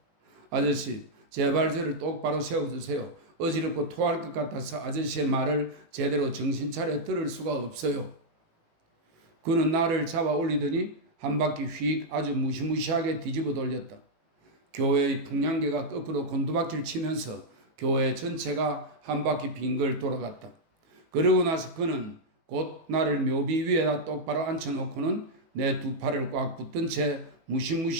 아저씨, 제발 저를 똑바로 세워주세요. 어지럽고 토할 것 같아서 아저씨의 말을 제대로 정신 차려 들을 수가 없어요. 그는 나를 잡아 올리더니 한 바퀴 휙 아주 무시무시하게 뒤집어 돌렸다. 교회의 풍량계가 거꾸로 곤두박질 치면서 교회 전체가 한 바퀴 빙글 돌아갔다. 그러고 나서 그는 곧 나를 묘비 위에다 똑바로 앉혀놓고는 내 두 팔을 꽉 붙든 채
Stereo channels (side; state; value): left; late; 18 ms